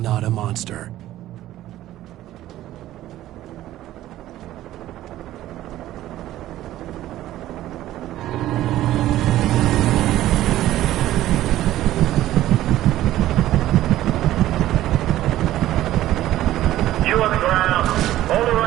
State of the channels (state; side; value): quieter; left; 14.2 dB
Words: a monster. the ground. Hold it